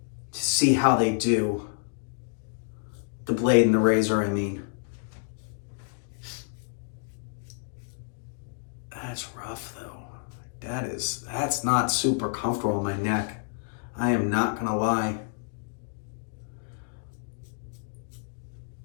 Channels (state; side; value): silent; right; digital silence